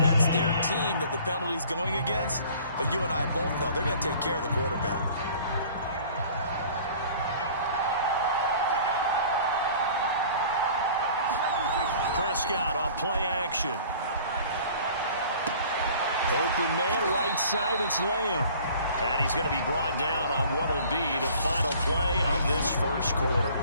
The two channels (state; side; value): inverted; both; correlation -0.49